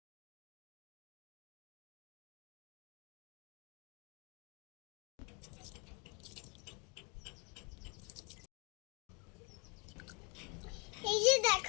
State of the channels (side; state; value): right; quieter; 29.3 dB